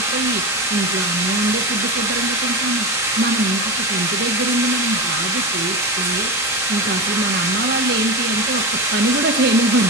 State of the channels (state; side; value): normal; both; correlation 0.20